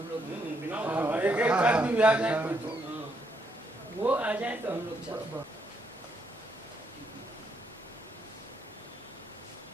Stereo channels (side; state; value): both; normal; correlation 0.75